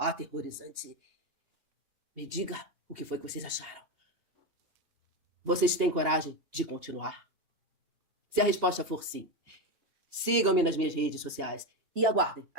Me diga o que foi que vocês acharam. Vocês têm coragem de continuar? Se a resposta for sim, sigam-me nas minhas redes sociais e aguardem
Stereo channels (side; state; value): left; late; 2.8 ms